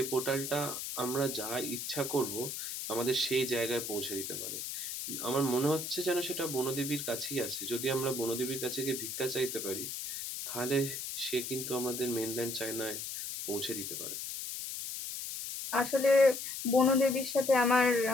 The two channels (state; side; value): noise; left; hiss, 5 dB below the sound